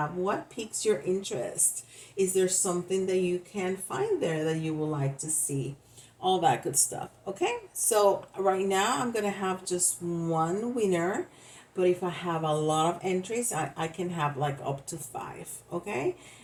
What piques your interest? Is there something that you can find there that you would like to see? All that good stuff. Okay, so right now I'm gonna have just one winner, but if I have a lot of entries, I can have like up to 5. Okay,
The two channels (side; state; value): both; identical; correlation 1.00